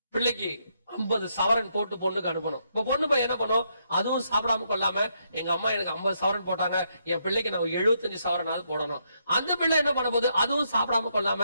பிள்ளைக்கு 50 சவரன் போட்டு பொண்ணுக்கு அனுப்பணும். இப்ப பொண்ணு போய் என்ன பண்ணும், அதுவும் சாப்பிடாம கொள்ளாம, எங்க அம்மா எனக்கு 50 சவரன் போட்டாங்க, என் பிள்ளைக்கு நான் 75 சவரனாவது போடணும். அந்த பிள்ளை என்ன பண்ண போது, அதுவும் சாப்பிடாம கொள்ளாம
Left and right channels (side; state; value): both; inverted; correlation -0.77